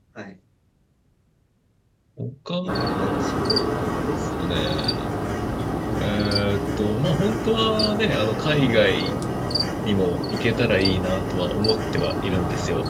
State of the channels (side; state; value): both; identical; correlation 1.00